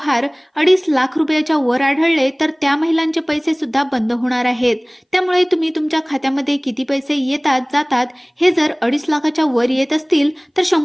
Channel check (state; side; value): identical; both; correlation 1.00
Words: 2.5 लाख रुपयाच्या वर आढळले तर त्या महिलांचे पैसे सुद्धा बंद होणार आहेत. त्यामुळे तुम्ही तुमच्या खात्यामध्ये किती पैसे येतात जातात हे जर 2.5 लाखाच्या वर येत असतील तर